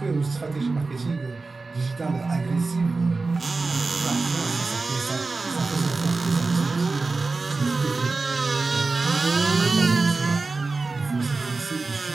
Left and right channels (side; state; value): left; quieter; 3.8 dB